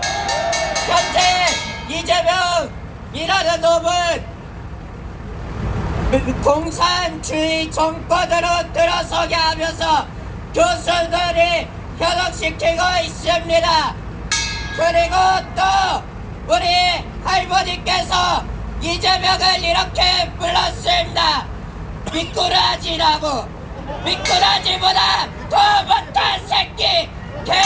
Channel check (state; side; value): identical; both; correlation 1.00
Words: 현재 이재명이라는 놈은 공산주의 정권으로 들어서게 하면서 교수들이 현혹시키고 있습니다. 그리고 또 우리 할머니께서 이재명을 이렇게 불렀습니다. 미꾸라지라고. 미꾸라지보다 더 못한 새끼,